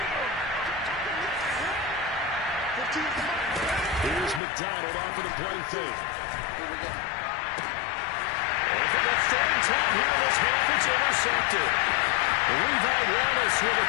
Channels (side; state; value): right; drops out; at 4.4 s